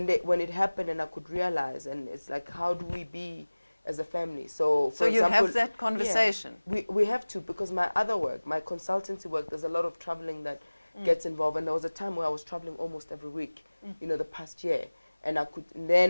it happened, and I could realize, and it's like, how do we be as a family? So, for you example, have that conversation. Yeah, we have to, because my other work, my consultancy work, there's a lot of traveling that gets involved, and there was a time where I was traveling almost every week, you know, the past year, and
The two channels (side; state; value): both; inverted; correlation -1.00